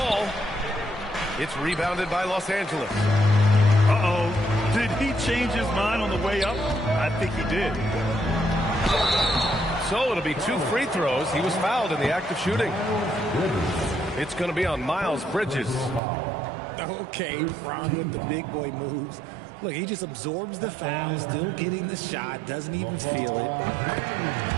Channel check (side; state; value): left; drops out; at 16.0 s